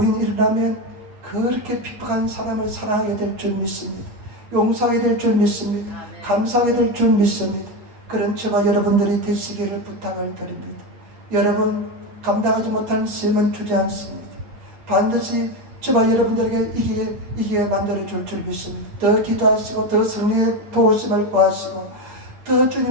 일어나면 그렇게 핍박한 사람을 사랑하게 될 줄 믿습니다. 용서하게 될 줄 믿습니다. 감사하게 될 줄 믿습니다. 그런 저와 여러분들이 되시기를 부탁을 드립니다. 여러분, 감당하지 못하는 시험은 주지 않습니다. 반드시 저와 여러분들에게 이기게 만들어줄 줄 믿습니다. 더 기도하시고 더 성령의 도우심을 구하시고 더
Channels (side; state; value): left; late; 8.9 ms